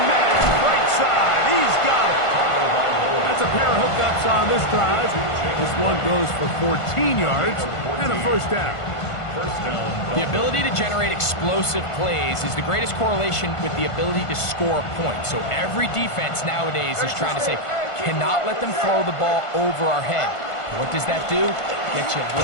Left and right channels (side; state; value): right; late; 1.5 ms